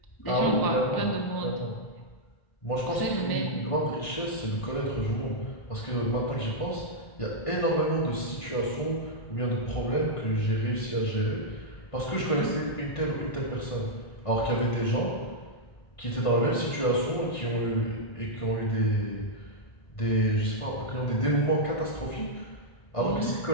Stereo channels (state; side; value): late; right; 1.6 ms